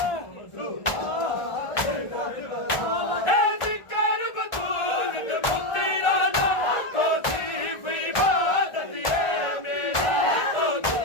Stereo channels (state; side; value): late; right; 1.4 ms